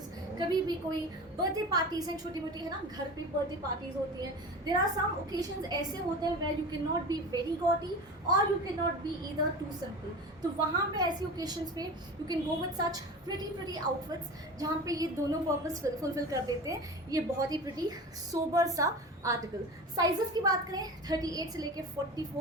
कभी भी कोई बर्थडे पार्टीज हैं छोटी मोटी, है ना, घर पे बर्थडे पार्टीज होती हैं. देयर आर सम ओकेजन्स ऐसे होते हैं where you can not be very gaudy और you can not be either too simple. तो वहाँ पे ऐसी ओकेजन्स पे you can go with such pretty outfits जहाँ पे ये दोनों पर्पस फुलफिल कर देते हैं. ये बहुत ही प्रिटी सोबर सा आर्टिकल. साइजेस की बात करें 38 से लेके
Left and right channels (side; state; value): both; normal; correlation 0.32